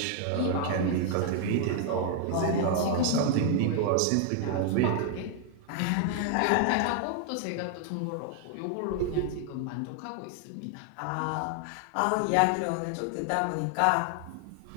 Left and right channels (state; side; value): different; both; correlation 0.00